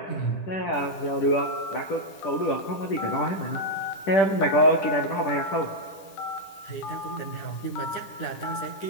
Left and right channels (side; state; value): right; late; 11 ms